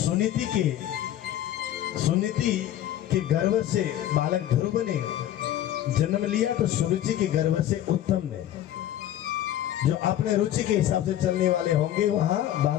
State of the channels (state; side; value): quieter; right; 12.1 dB